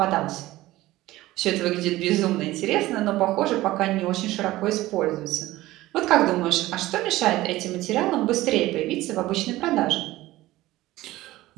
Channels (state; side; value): quieter; left; 17.1 dB